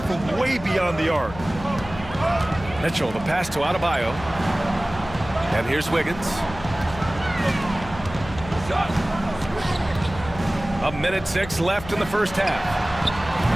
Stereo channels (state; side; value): noise; left; hum, 13 dB below the sound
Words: from way beyond the arc. Mitchell, the pass to Adebayo. And here's Wiggins. A minute 6 left in the first half.